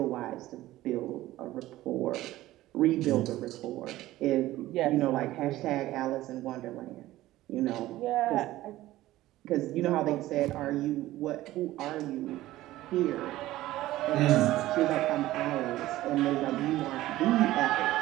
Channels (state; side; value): quieter; left; 16.0 dB